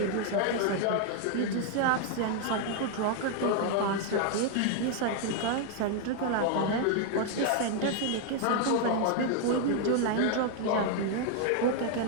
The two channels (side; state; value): both; different; correlation 0.00